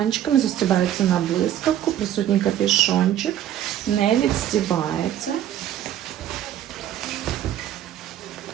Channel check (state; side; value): quieter; left; 11.4 dB